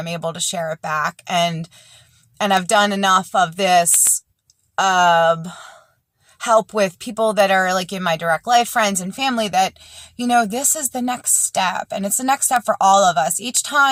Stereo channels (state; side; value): identical; both; correlation 1.00